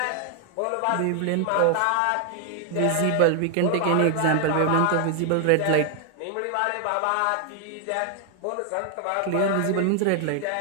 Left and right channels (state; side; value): different; both; correlation 0.00